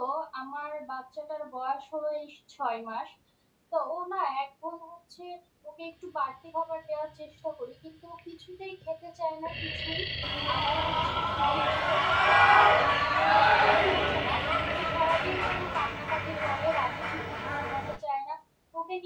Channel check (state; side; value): identical; both; correlation 1.00